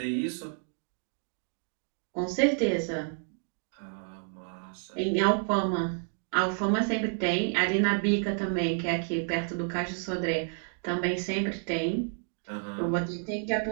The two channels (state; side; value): silent; left; 58 dB below the other